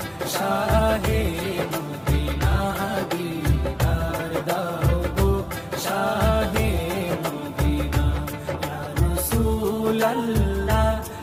শাহে মদিনা দিদার দাও গো শাহে মদিনা ইয়া রাসূলুল্লাহ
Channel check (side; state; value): both; identical; correlation 1.00